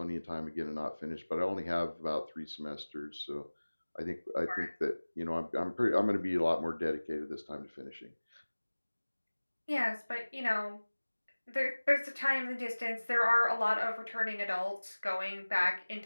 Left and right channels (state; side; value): inverted; both; correlation -1.00